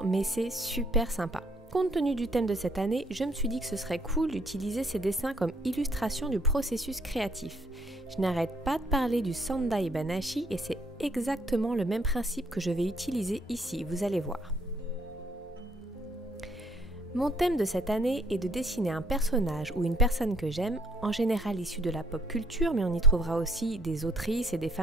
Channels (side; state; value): both; normal; correlation 0.65